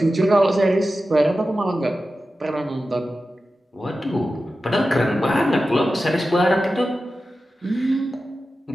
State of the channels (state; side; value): normal; both; correlation 0.93